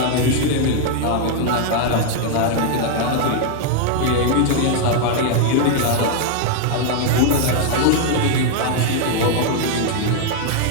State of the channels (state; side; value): different; both; correlation 0.00